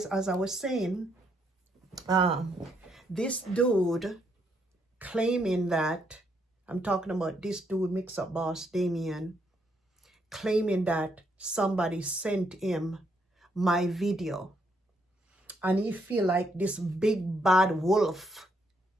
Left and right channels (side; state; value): both; normal; correlation 0.74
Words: as I was saying, um, this dude claiming that, I'm talking about this dude, Mix Up Boss Damien, claiming that somebody sent him my video. And he feel like this big bad wolf.